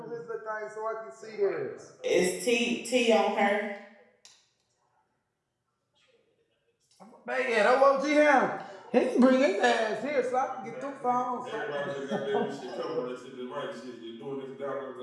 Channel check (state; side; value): identical; both; correlation 1.00